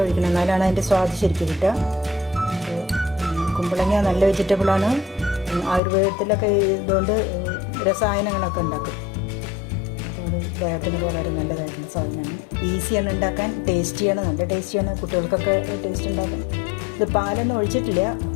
ഒഴിക്കണം, എന്നാലാണ് അതിൻ്റെ സ്വാദ് ശരിക്കും കിട്ടുക. കുമ്പളങ്ങ നല്ല വെജിറ്റബിളാണ്. ആയുർവേദത്തിലൊക്കെ ഇതുകൊണ്ട് രസായനങ്ങളൊക്കെ ഉണ്ടാക്കും. അപ്പോൾ അത് ദേഹത്തിന് വളരെ നല്ലതായിട്ടുള്ള സാധനമാണ്. ഈസിയാണ് ഉണ്ടാക്കാൻ, ടേസ്റ്റിയാണ്, നല്ല ടേസ്റ്റിയാണ്. കുട്ടികൾക്കൊക്കെ ടേസ്റ്റ് ഉണ്ടാക്കും. ഇത് പാലൊന്നും ഒഴിച്ചിട്ടില്ല.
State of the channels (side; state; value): right; drops out; at 5.8 s